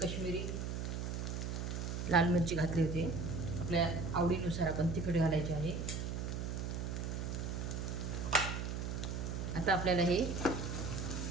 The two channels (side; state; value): right; noise; hum, 3 dB below the sound